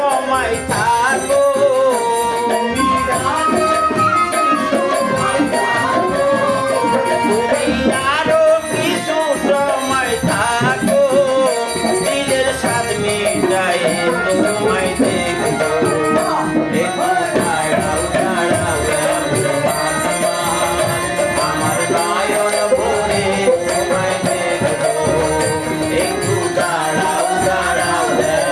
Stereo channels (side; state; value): both; identical; correlation 1.00